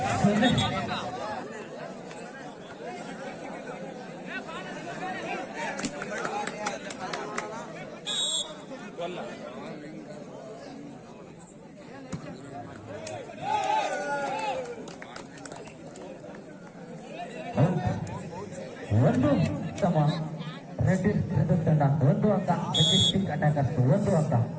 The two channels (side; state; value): both; identical; correlation 1.00